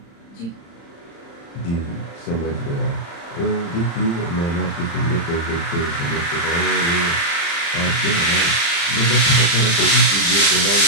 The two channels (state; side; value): late; right; 35 ms